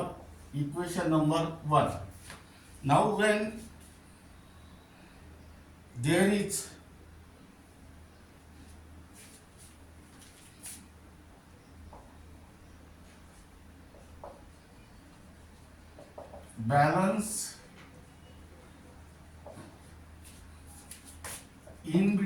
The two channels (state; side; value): identical; both; correlation 1.00